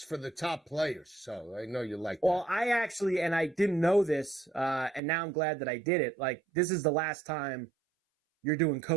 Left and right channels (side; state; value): left; drops out; at 5.0 s